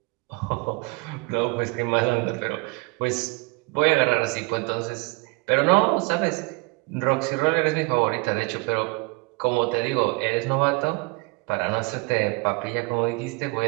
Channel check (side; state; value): left; quieter; 27.5 dB